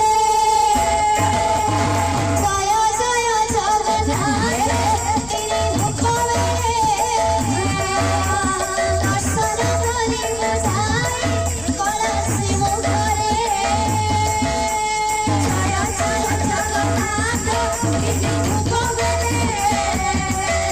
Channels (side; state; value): left; noise; hum, 16 dB below the sound